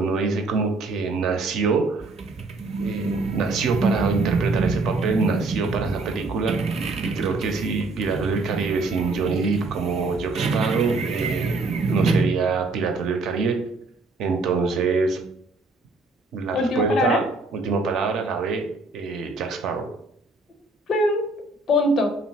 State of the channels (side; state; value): left; quieter; 3.2 dB